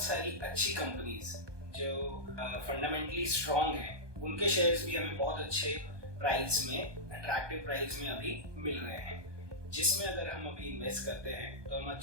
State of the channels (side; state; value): left; late; 1.2 ms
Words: सारी अच्छी कंपनीज जो फंडामेंटली स्ट्रॉन्ग हैं उनके शेयर्स भी हमें बहुत अच्छे प्राइस में, अट्रैक्टिव प्राइस में अभी मिल रहे हैं, जिसमें अगर हम अभी इन्वेस्ट करते हैं तो हम